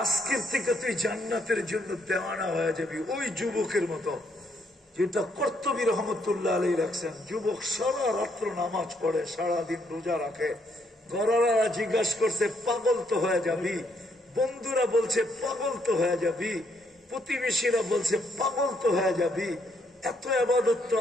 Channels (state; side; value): normal; both; correlation 0.73